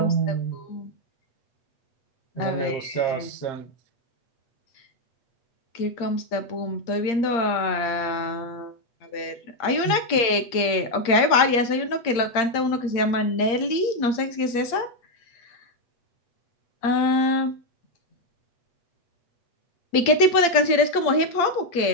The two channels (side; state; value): right; late; 8.6 ms